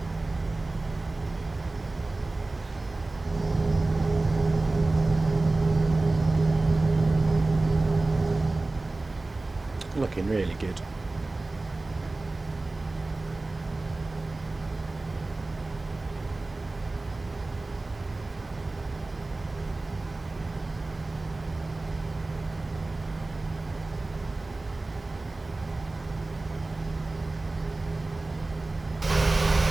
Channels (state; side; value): quieter; left; 3.1 dB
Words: Looking really good.